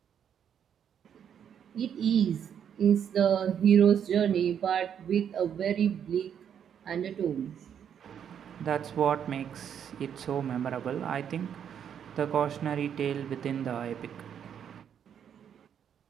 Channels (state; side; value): quieter; left; 8.6 dB